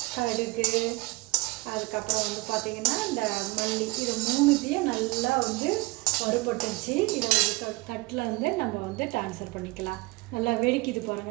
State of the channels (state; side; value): quieter; left; 23.3 dB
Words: கடுகு, அதுக்கப்புறம் பார்த்திங்கன்னா இந்த மல்லி, இது 3த்தையும் நல்லா வறுபட்டுருச்சு. இதை ஒரு தட்டில் நம்ம ட்ரான்ஸ்ஃபர் பண்ணிக்கலாம். நல்லா வெடிக்குது